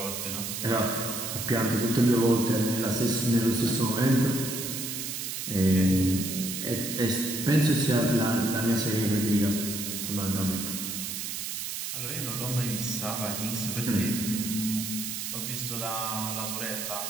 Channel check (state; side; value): noise; right; hiss, 4 dB below the sound